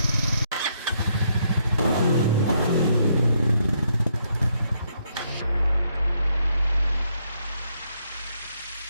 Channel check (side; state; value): both; inverted; correlation -0.74